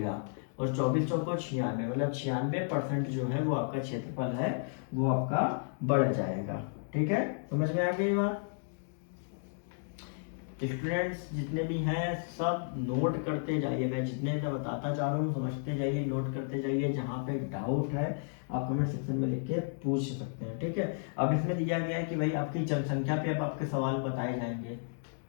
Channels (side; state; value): right; silent; digital silence